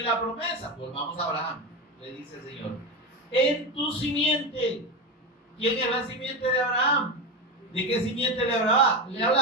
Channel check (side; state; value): both; normal; correlation 0.17